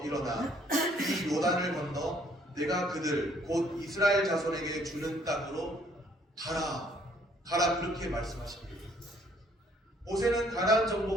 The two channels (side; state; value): both; normal; correlation 0.63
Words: 일어나 이 요단을 건너 내가 그들 곧 이스라엘 자손에게 주는 땅으로 가라. 가라 그렇게 말씀하십니다. 모세는 가나안